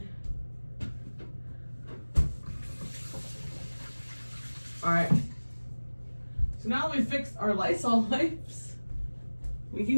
All right. So now that we fixed our Lysol wipes, we can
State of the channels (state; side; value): inverted; both; correlation -1.00